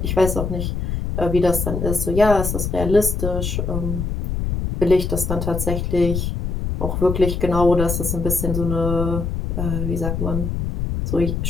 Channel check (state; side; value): noise; left; rumble, 2 dB below the sound